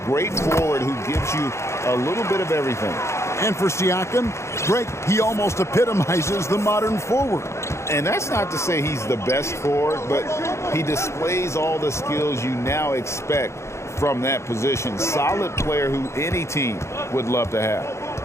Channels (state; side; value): late; right; 0.13 ms